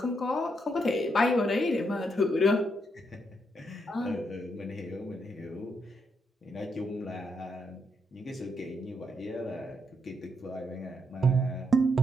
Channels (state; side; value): normal; both; correlation 0.78